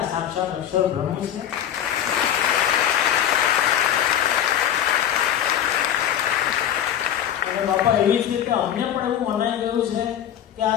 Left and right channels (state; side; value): quieter; right; 10.3 dB